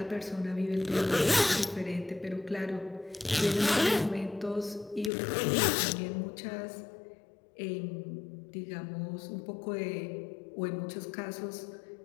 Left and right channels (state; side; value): drops out; right; at 5.1 s